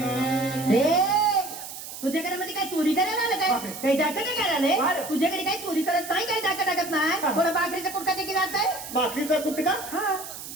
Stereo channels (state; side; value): noise; right; hiss, 11 dB below the sound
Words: तुझ्याकडे मध्ये काय चोरी करायला आलं काय? बापरे. काही डाका नाही करायला बरं. तुझ्याकडे काही चोरी करत नाही, काही डाका टाकत नाही. हा. कोणा बाकरीचा कुडका देखील राहत आहे. बाकीचा कुठे का हा.